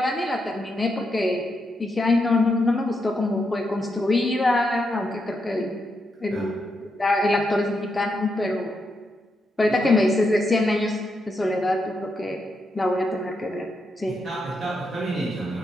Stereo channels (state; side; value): normal; both; correlation 0.83